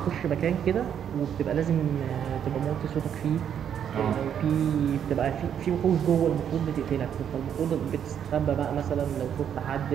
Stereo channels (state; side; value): quieter; left; 8.8 dB